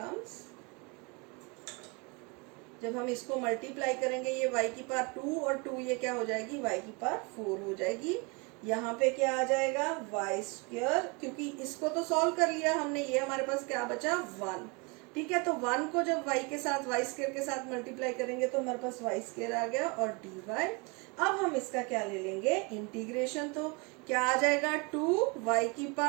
जब हम इसको मल्टीप्लाई करेंगे ये y की पावर 2 और 2 ये क्या हो जाएगी, y की पावर 4 हो जाएगी। यहाँ पे क्या आ जाएगा, y², क्योंकि इसको तो सॉल्व कर लिया हमने, ये हमारे पास क्या बचा, 1। ठीक है, तो 1 को जब y के साथ y² के साथ मल्टीप्लाई करेंगे तो हमारे पास y² आ गया और dy। अब हम इसका क्या ले लेंगे, इंटीग्रेशन, तो क्या आ जाएगा, 2y की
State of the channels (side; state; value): left; quieter; 29.8 dB